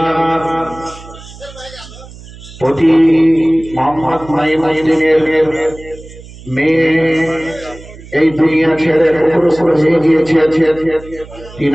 প্রতি মোহাম্মদ নাঈমুদ্দিনের মেয়ে এই দুনিয়া ছেড়ে অগ্রসর হয়ে গিয়েছে।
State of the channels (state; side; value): noise; right; hum, 18 dB below the sound